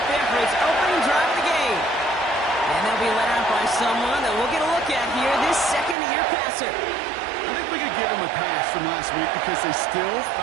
there for its opening drive of the game. And they'll be led out by someone that we'll get a look at here, this second-year passer. I think we could give him a pass from last week because they still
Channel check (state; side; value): drops out; left; at 6.0 s